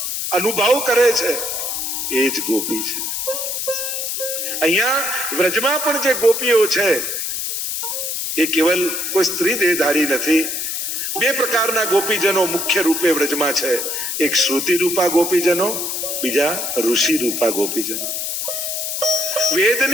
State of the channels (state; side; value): noise; left; hiss, 2 dB below the sound